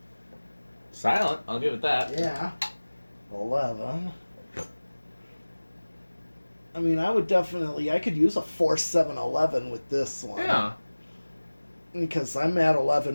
Silent, I'll give it that. Yeah. 11. I mean, I could use a 4, 7, 11 with this one. Yeah. Because I'm at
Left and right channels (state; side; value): inverted; both; correlation -1.00